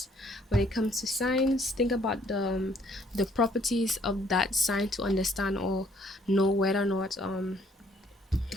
When it comes to signs, think about the properties of that sign to understand or know whether or not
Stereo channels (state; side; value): normal; both; correlation 0.64